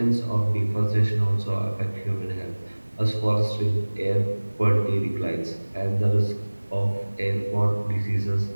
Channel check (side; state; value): both; inverted; correlation -1.00